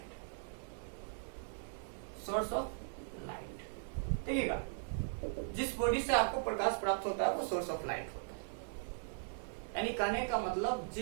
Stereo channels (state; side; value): silent; left; digital silence